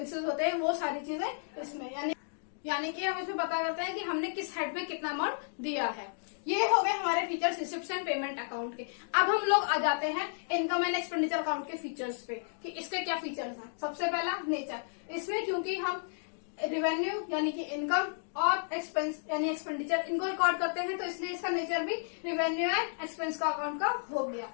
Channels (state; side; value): silent; right; digital silence